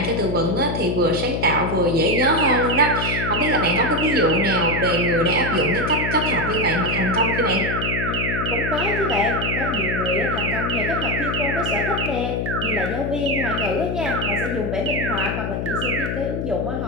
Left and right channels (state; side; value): noise; left; hum, 2 dB below the sound